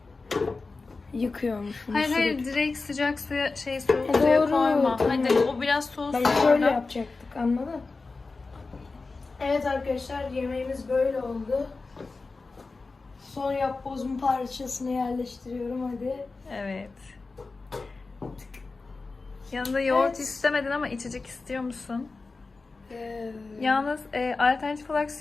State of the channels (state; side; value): quieter; right; 3.9 dB